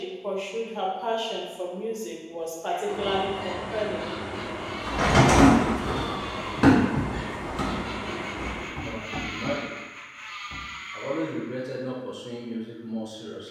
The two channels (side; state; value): both; identical; correlation 1.00